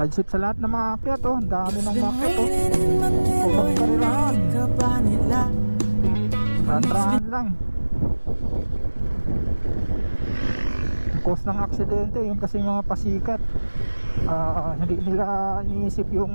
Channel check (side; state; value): both; inverted; correlation -1.00